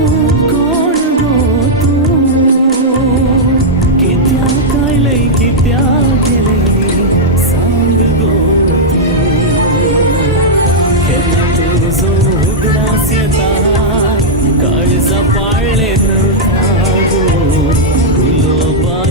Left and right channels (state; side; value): normal; both; correlation -0.06